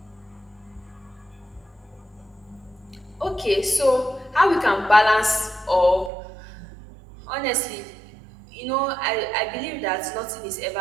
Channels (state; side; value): drops out; left; at 6.1 s